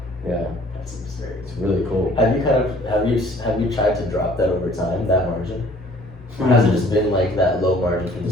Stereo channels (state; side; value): normal; both; correlation 0.55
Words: Yeah. That's absurd. It's really cool. Have you tried to drop that over time, that margin? Or has it just been like that low margin from the